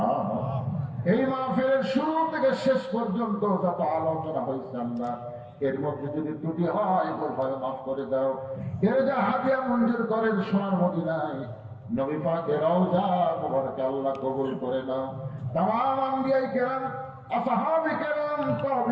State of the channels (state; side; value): identical; both; correlation 1.00